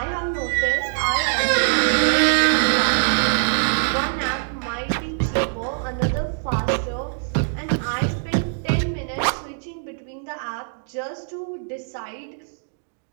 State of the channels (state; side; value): silent; left; digital silence